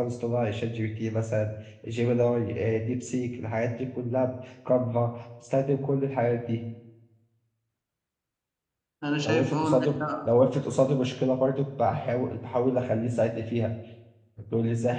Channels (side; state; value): both; identical; correlation 1.00